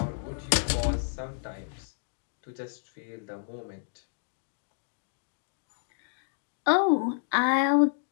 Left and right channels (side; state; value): right; silent; digital silence